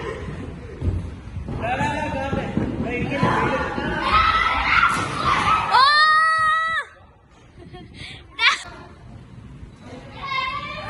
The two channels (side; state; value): both; identical; correlation 1.00